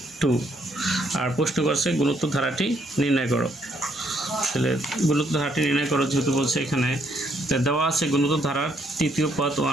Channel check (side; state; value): both; normal; correlation 0.71